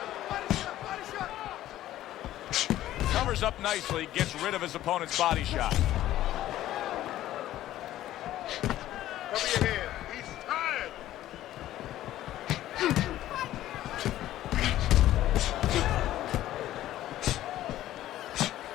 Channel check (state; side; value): quieter; right; 13.8 dB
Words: Covers up nicely, gets rid of his opponent's body shot. Cover your head. He's tired.